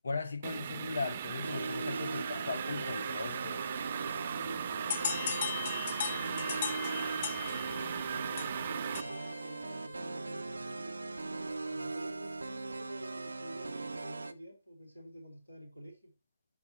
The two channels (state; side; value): inverted; both; correlation -0.76